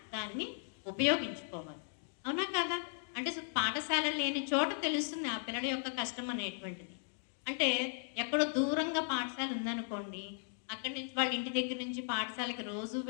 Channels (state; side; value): silent; right; digital silence